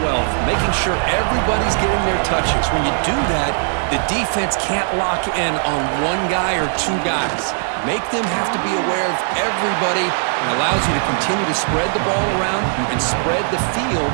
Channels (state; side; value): silent; left; digital silence